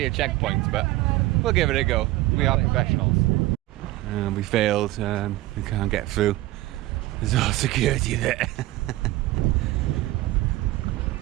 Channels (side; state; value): left; quieter; 17.4 dB